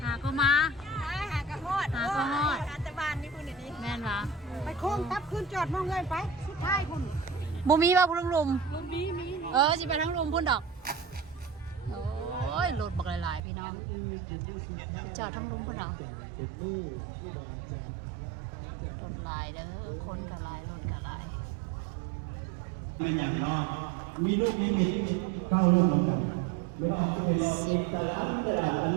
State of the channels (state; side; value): drops out; left; at 13.4 s